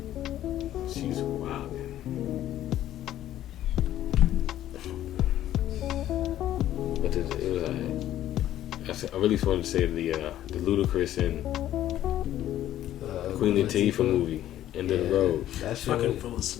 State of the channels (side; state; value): right; quieter; 12.6 dB